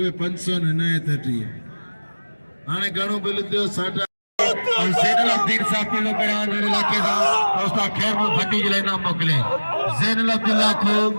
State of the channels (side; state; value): both; inverted; correlation -1.00